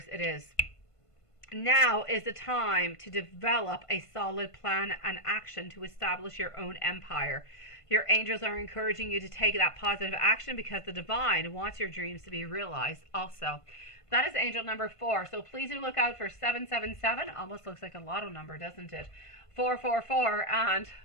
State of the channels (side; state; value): right; late; 1.5 ms